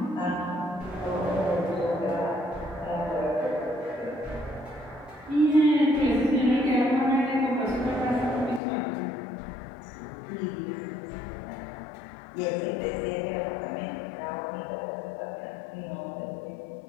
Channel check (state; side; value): drops out; right; at 8.6 s